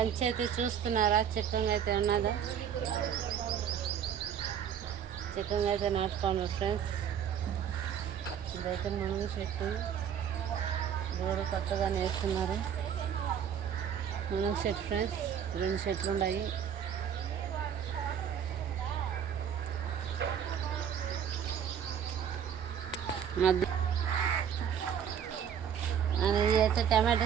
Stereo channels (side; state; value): left; quieter; 8.5 dB